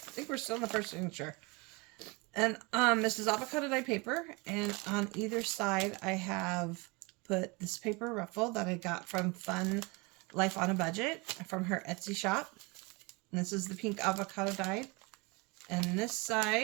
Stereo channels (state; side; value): quieter; left; 27.1 dB